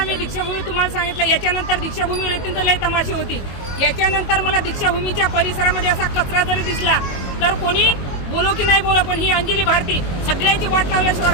मी दीक्षाभूमी तुम्हाला सांगितलं, याच्यानंतर दीक्षाभूमीवर येतील तर लय तमाशे होतील. याच्यानंतर मला दीक्षाभूमीच्या परिसरामध्ये असा कचरा जरी दिसला तर कोणी बोलो की नाही बोलो, पण ही अंजली भारती सगळ्याची वाट लावल्याशिवाय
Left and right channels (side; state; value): right; late; 22 ms